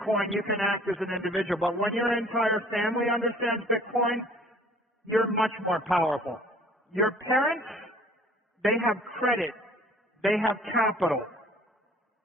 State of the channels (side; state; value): both; normal; correlation 0.52